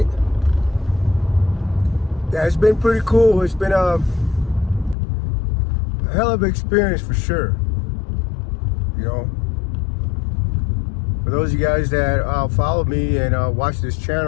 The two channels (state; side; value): drops out; right; at 5.0 s